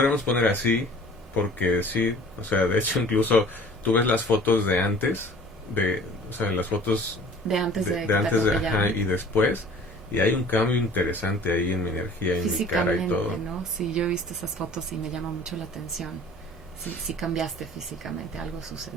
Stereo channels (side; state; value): both; normal; correlation 0.48